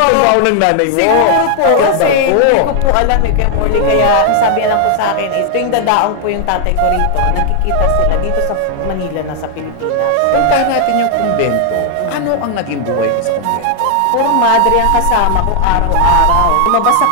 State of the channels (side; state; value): both; different; correlation 0.00